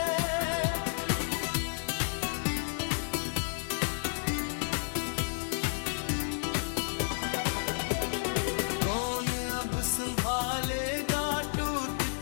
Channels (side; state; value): right; silent; digital silence